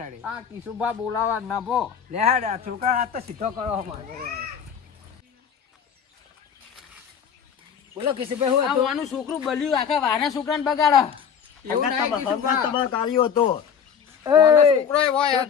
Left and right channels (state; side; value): quieter; right; 7.4 dB